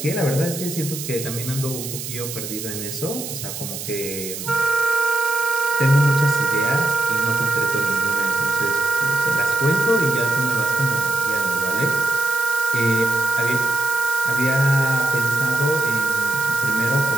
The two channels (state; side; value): noise; right; hiss, 8 dB below the sound